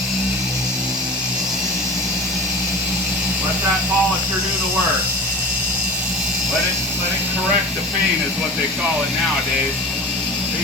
let that polisher do the work. Let it correct the paint is what they call it nowadays.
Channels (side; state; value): both; normal; correlation 0.35